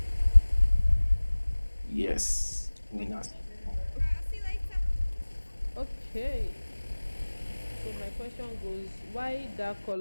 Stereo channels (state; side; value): inverted; both; correlation -1.00